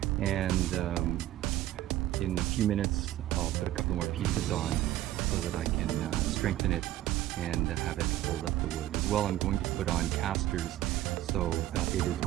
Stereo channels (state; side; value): quieter; left; 14.0 dB